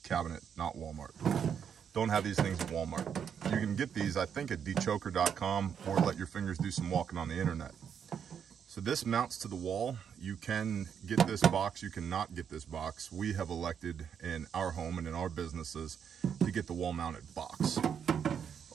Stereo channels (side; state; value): left; quieter; 7.8 dB